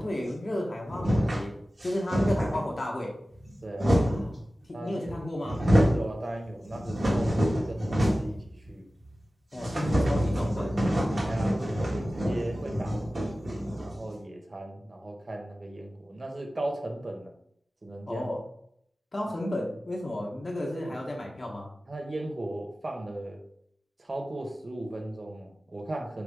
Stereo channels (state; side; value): normal; both; correlation 0.96